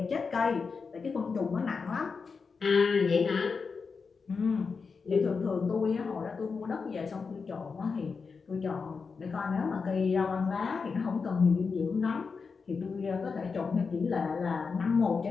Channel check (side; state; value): right; quieter; 5.1 dB